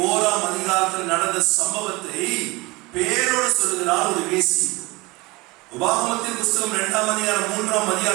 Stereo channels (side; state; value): left; quieter; 23.4 dB